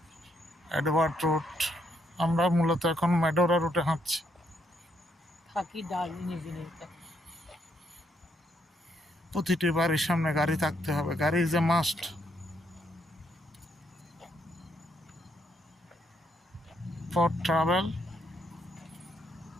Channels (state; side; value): normal; both; correlation 0.74